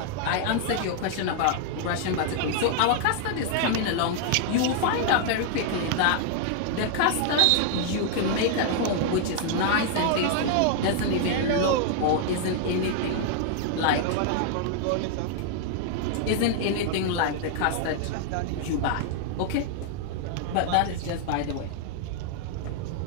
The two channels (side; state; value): both; different; correlation 0.00